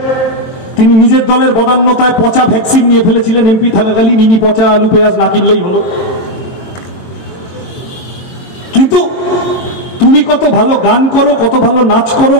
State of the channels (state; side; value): late; right; 22 ms